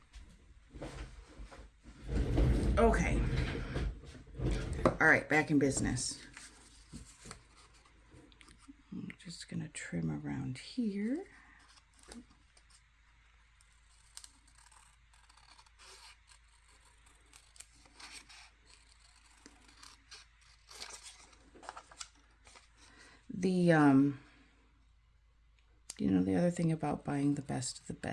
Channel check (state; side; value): identical; both; correlation 1.00